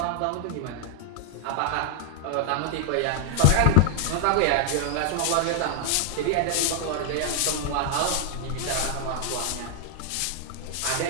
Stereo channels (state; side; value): different; both; correlation 0.00